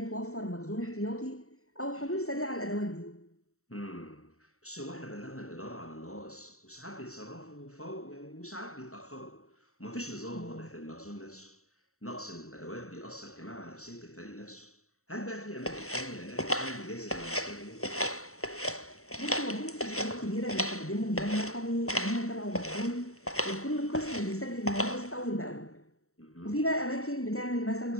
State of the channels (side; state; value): right; late; 0.64 ms